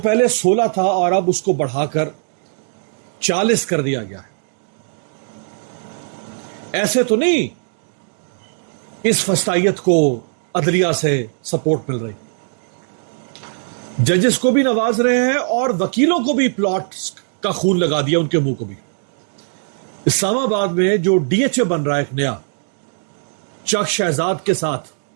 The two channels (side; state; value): left; silent; digital silence